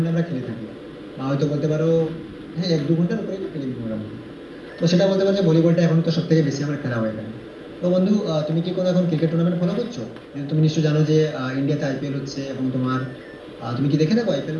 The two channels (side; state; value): both; identical; correlation 1.00